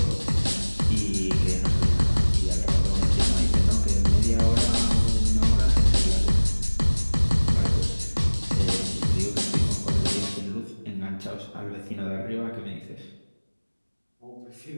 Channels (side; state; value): both; inverted; correlation -1.00